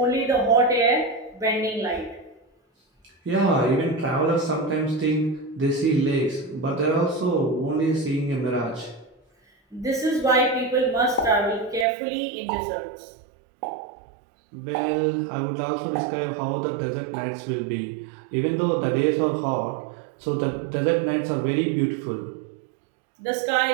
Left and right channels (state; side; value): drops out; left; at 11.9 s